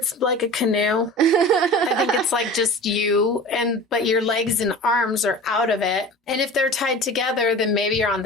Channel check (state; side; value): normal; both; correlation 0.37